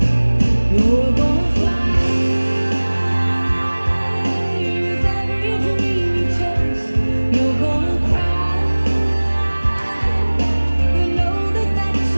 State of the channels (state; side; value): inverted; both; correlation -1.00